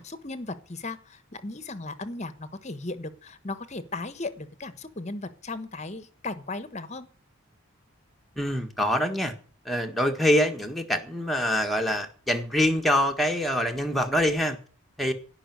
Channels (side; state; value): both; normal; correlation 0.70